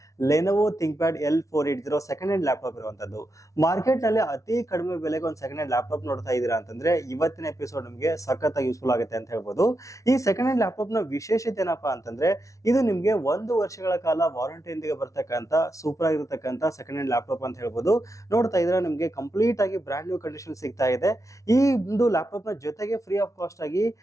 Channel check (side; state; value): right; late; 0.15 ms